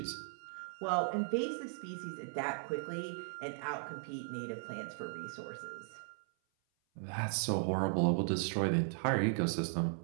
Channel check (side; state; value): left; silent; 53 dB below the other